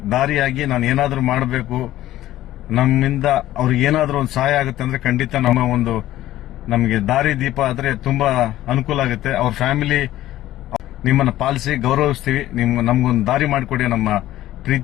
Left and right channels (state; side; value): quieter; right; 14.4 dB